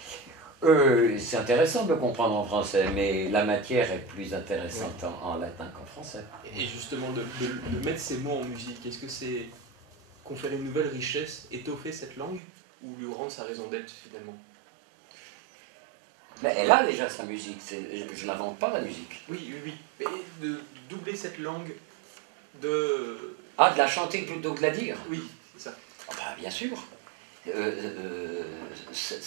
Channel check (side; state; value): left; drops out; at 12.4 s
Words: C'est intéressant de le comprendre en français, mais la matière est plus intéressante en latin qu'en français. Et justement, de mettre ces mots en musique, est-ce que c'est conférer une nouvelle richesse, étoffer cette langue, ou lui rendre sa raison d'être finalement? Mais elle a déjà sa musique, je n'invente pas la musique. Oui. Mais de doubler cette langue, de... Ah, de la chanter plutôt que de la dire? Oui, c'est ça. Ah bah, bien sûr.